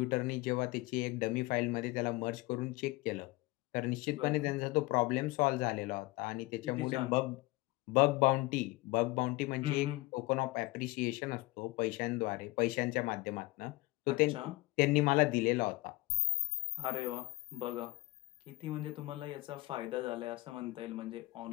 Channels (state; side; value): quieter; right; 21.0 dB